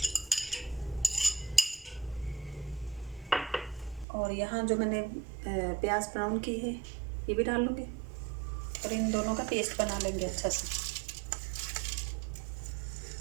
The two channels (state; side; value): drops out; left; at 4.0 s